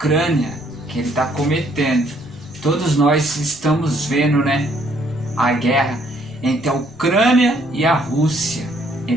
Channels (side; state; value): left; noise; rumble, 25 dB below the sound